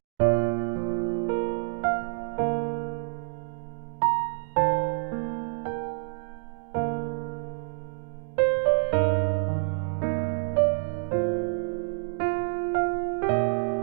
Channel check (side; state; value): left; silent; digital silence